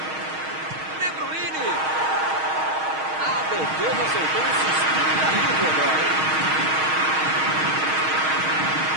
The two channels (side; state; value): left; late; 6.4 ms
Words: De Bruyne. A defesa soltou um suspiro de alívio agora, hein?